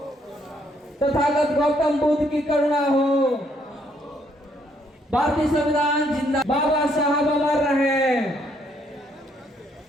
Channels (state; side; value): normal; both; correlation 0.70